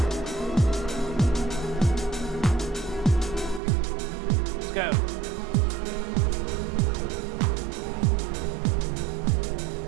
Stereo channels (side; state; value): left; drops out; at 3.6 s